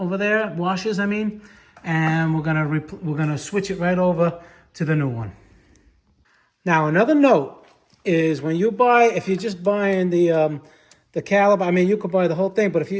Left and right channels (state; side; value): identical; both; correlation 1.00